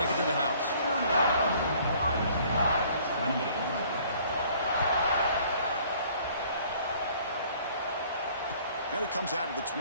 it to the house. And it comes out of the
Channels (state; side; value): inverted; both; correlation -0.57